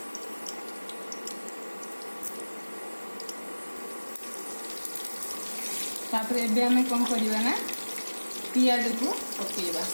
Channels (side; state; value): both; inverted; correlation -1.00